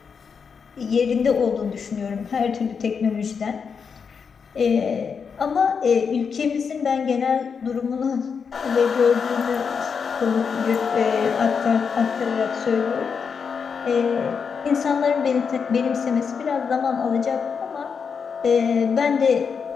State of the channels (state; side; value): quieter; right; 6.1 dB